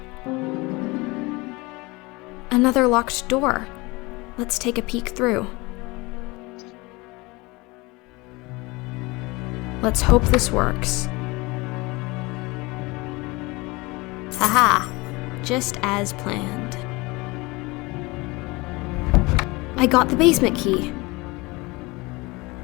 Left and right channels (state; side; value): quieter; right; 23.9 dB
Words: Another locked door. Let's take a peek through. Let's hope this works. Haha, just as planned. I got the basement key.